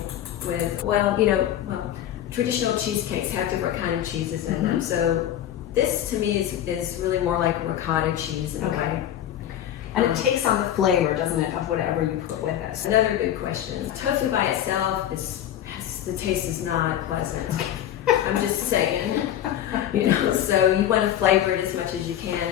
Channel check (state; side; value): quieter; right; 11.3 dB